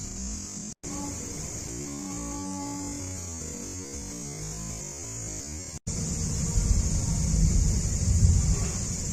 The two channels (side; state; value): both; identical; correlation 1.00